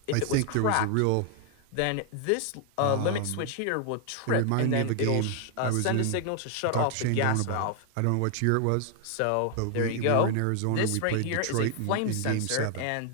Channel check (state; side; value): different; both; correlation 0.00